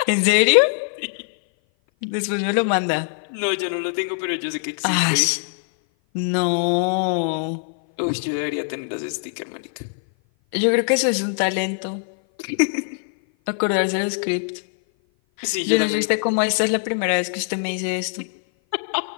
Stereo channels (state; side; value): silent; right; 56 dB below the other